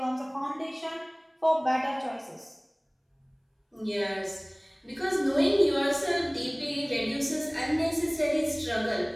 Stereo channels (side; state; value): both; identical; correlation 1.00